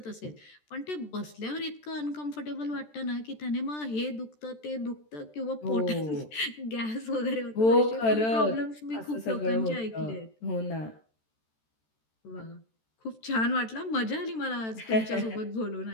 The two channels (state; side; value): late; right; 13 ms